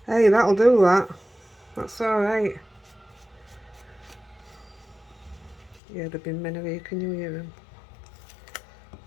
Hey, that'll do that. That's alright. Yeah, there've been many here, can you hear them?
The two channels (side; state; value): right; drops out; at 5.8 s